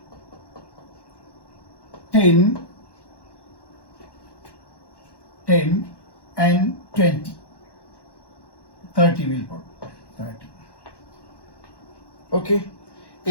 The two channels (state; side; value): late; right; 1.1 ms